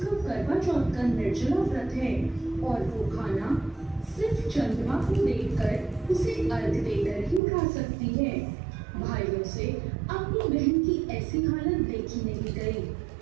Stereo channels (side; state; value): left; drops out; at 7.4 s